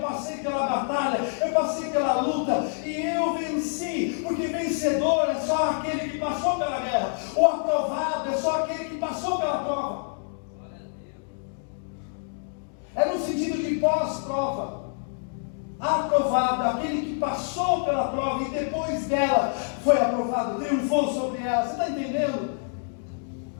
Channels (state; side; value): silent; right; digital silence